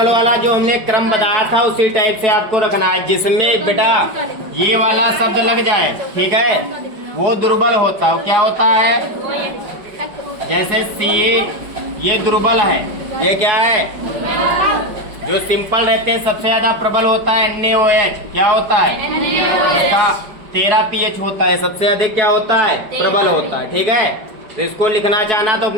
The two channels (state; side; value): late; left; 5.1 ms